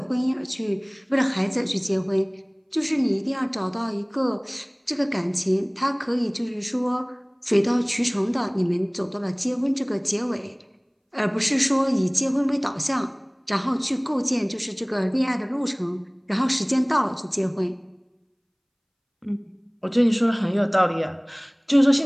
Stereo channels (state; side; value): identical; both; correlation 1.00